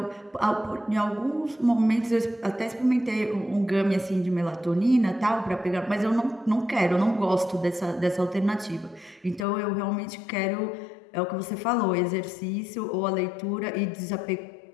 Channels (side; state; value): right; drops out; at 9.5 s